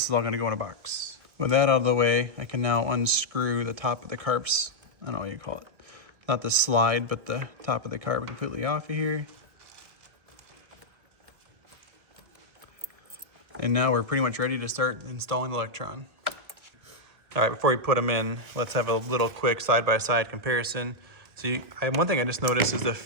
is all gonna go in a box. With that out of the way, I can now unscrew the top of the carbs. I don't know what you call it. Not the slide, but the top of the carb completely off of here. And now we're pretty much ready to start installing the Lectron. All right, before we put them in, let's have a little quick side-by-side comparison. So one thing I just noticed is the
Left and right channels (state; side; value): late; left; 1.7 ms